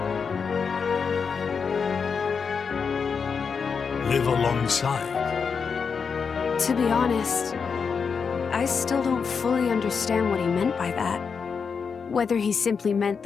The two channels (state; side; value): quieter; right; 5.8 dB